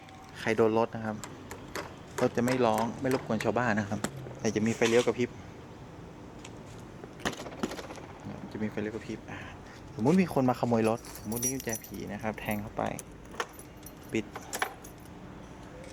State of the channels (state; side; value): identical; both; correlation 1.00